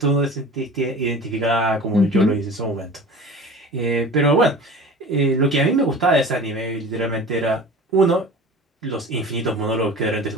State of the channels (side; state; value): both; normal; correlation 0.39